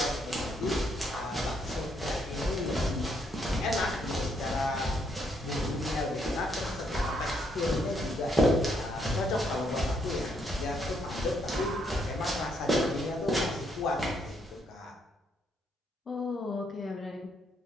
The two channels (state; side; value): normal; both; correlation 0.73